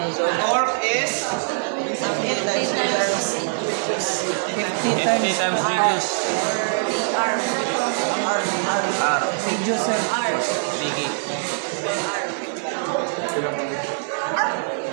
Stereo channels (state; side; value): silent; left; digital silence